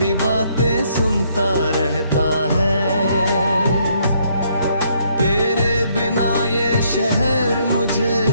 बातें सुनता रहता है। तेरे बिना ये शहर मुझे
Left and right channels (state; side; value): inverted; both; correlation -0.70